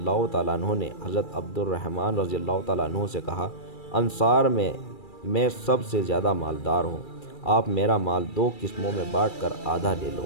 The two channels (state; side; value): late; right; 2.3 ms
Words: تعالیٰ عنہ نے حضرت عبد الرحمن رضی اللہ تعالیٰ عنہ سے کہا، انصار میں سب سے زیادہ مالدار ہوں، آپ میرا مال 2 قسموں میں بانٹ کر آدھا لے لو،